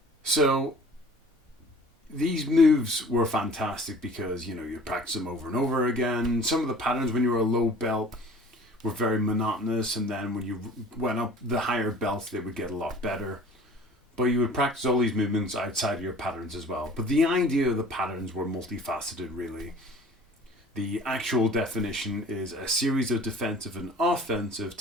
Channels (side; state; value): both; normal; correlation 0.47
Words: So these moves were fantastic because you practice them over and over again. Some of the patterns when you were a low belt were very monotonous, and then when you went up the higher belts they would get a lot better. But you would practice all these movements outside of your patterns as well. But the idea of the patterns were multifaceted, really. The actual definition is a series of defensive and offensive